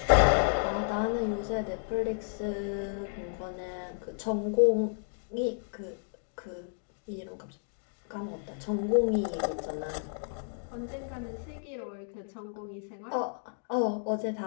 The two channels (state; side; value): silent; right; digital silence